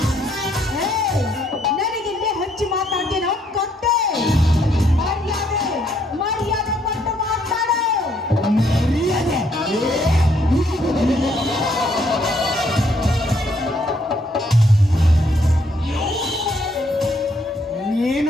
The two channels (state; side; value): normal; both; correlation 0.70